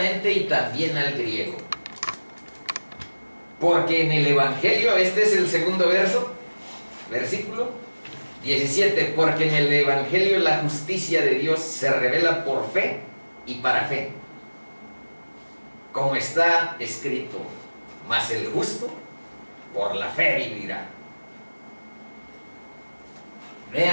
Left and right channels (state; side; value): inverted; both; correlation -1.00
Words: y también al griego. Porque en el Evangelio, este es el segundo versículo 17, porque en el Evangelio la justicia de Dios se revela por fe y para fe, como está escrito, mas el justo por la fe vivirá.